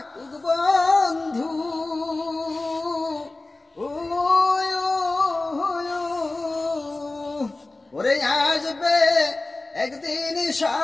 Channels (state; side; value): quieter; right; 3.1 dB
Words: বন্ধু, ওরে আসবে একদিন